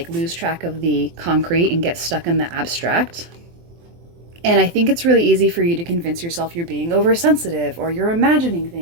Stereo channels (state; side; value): late; left; 23 ms